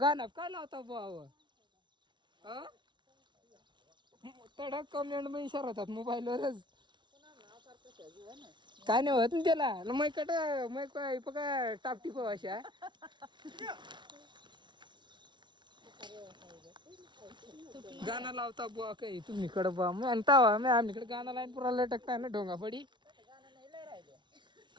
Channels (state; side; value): late; left; 0.23 ms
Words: काय लावता बाबा तडक कमेंट मग इशारा होतात मोबाईलवरच काय नाही होत ना त्याला मैकट मैक बघा टापटिप अशा गाणं लावता बुवा काही तुम्ही कडे बा मग आणता मी आमच्याकडे गाणं लाईन पुरा लटकता ना ढोंगा पडी